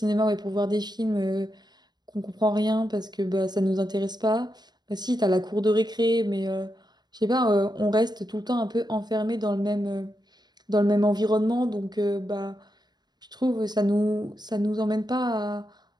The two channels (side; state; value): left; late; 0.20 ms